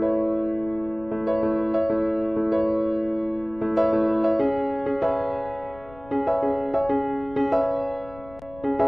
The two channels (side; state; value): left; noise; rumble, 21 dB below the sound